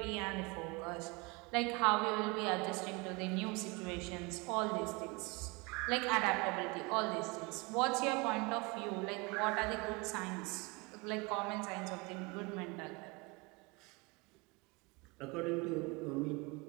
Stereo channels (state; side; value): quieter; left; 27.6 dB